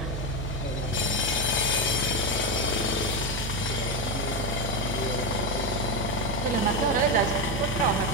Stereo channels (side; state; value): right; noise; hum, 4 dB below the sound